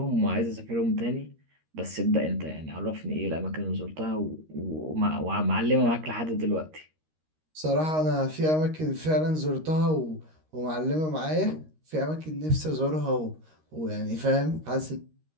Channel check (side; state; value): left; late; 13 ms